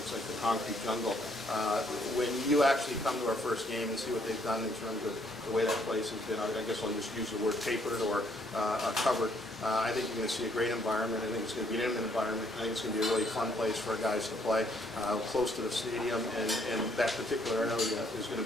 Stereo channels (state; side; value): normal; both; correlation 0.68